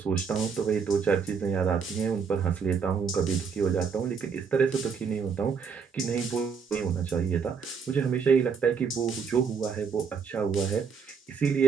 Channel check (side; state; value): left; quieter; 6.0 dB